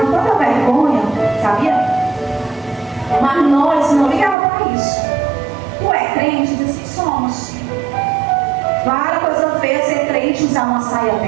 com toda vergonha, sabia? Mas nós não ligávamos para isso. Tu é crente? Diz que somos. Várias coisas feias ser crente, usar uma saia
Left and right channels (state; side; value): drops out; left; at 4.4 s